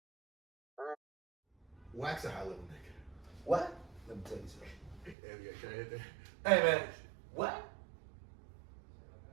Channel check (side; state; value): left; drops out; at 5.2 s